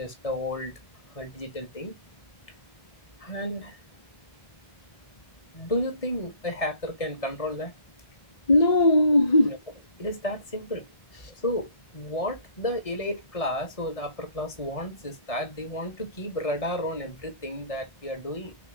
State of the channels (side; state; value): right; late; 1.6 ms